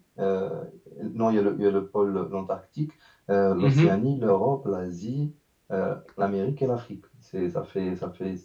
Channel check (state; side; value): identical; both; correlation 1.00